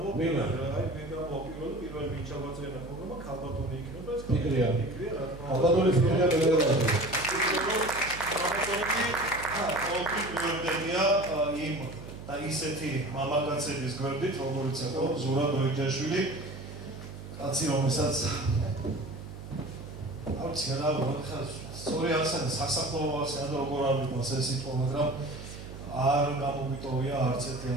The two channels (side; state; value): right; noise; hum, 12 dB below the sound